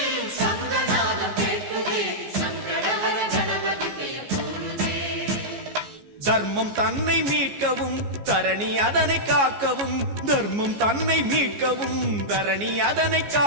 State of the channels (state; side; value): late; left; 14 ms